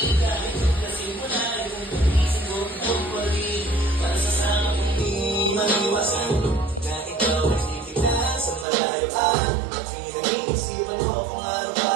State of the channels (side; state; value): left; drops out; at 8.7 s